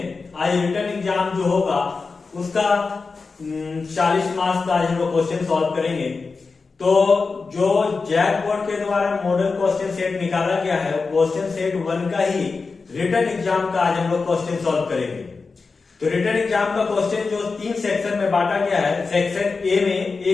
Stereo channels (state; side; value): quieter; right; 4.4 dB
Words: आज रिटर्न एग्जाम जो होगा उसका 40 मार्क्स का आज हम लोग क्वेश्चन सॉल्व करेंगे। तो जो जैक बोर्ड के द्वारा मॉडल क्वेश्चन सेट निकाला गया है, क्वेश्चन सेट 1 का ही रिटर्न एग्जाम का आज हम लोग क्वेश्चन सॉल्व करेंगे। तो रिटर्न एग्जाम का क्वेश्चन जो 3 सेक्शन में बांटा गया है, सेक्शन ए में